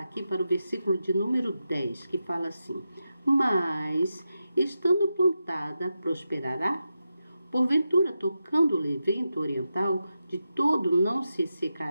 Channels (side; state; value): both; inverted; correlation -0.89